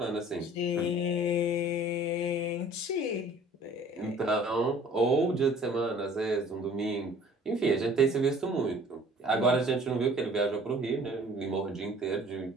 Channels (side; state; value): both; normal; correlation 0.51